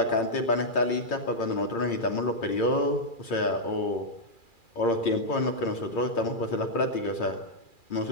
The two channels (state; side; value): late; right; 2.4 ms